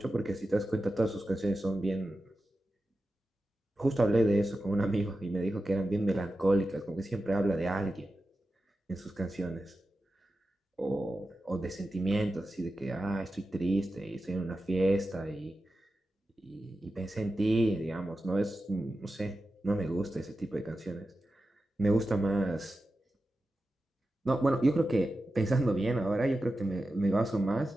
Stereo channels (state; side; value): normal; both; correlation 0.92